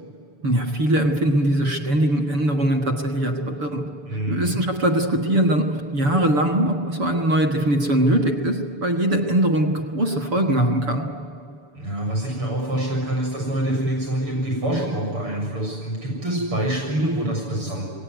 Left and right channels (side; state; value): left; late; 6.9 ms